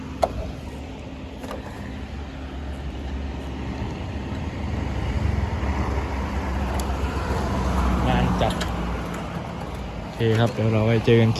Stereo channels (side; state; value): both; identical; correlation 1.00